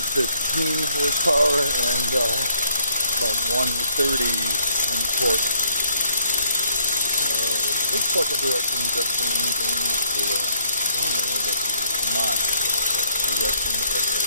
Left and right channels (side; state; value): both; inverted; correlation -0.66